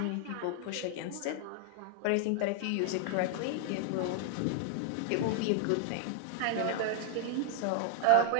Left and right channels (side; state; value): both; different; correlation 0.00